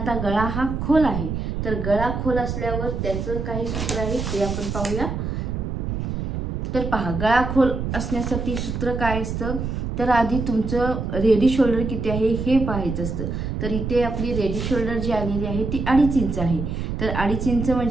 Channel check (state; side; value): noise; right; rumble, 3 dB below the sound